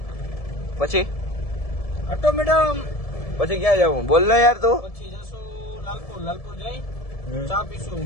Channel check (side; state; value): right; late; 1.7 ms